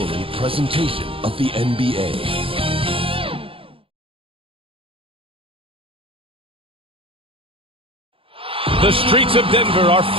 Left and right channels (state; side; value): late; left; 0.26 ms